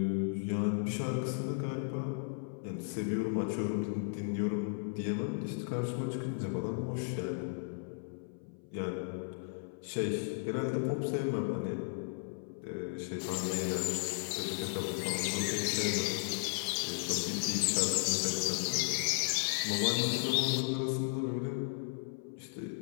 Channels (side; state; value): right; silent; 54 dB below the other